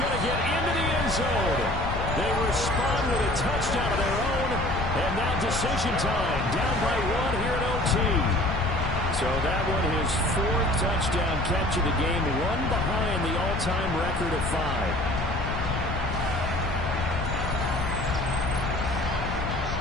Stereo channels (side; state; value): left; noise; rumble, 4 dB below the sound